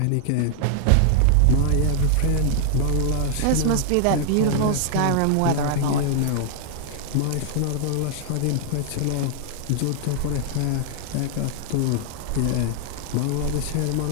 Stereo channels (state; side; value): different; both; correlation 0.00